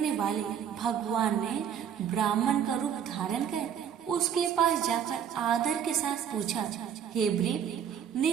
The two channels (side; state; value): left; quieter; 8.5 dB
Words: वाले भगवान ने ब्राह्मण का रूप धारण कर उसके पास जाकर आदर के साथ पूछा, हे ब्रीप,